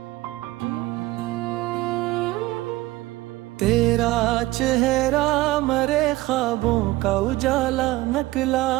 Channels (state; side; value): quieter; left; 18.5 dB